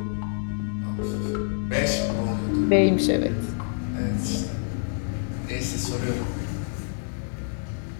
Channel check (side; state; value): right; silent; digital silence